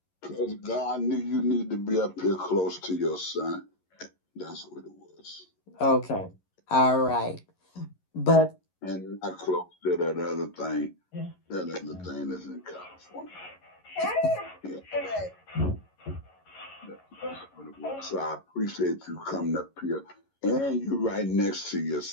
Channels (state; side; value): late; right; 11 ms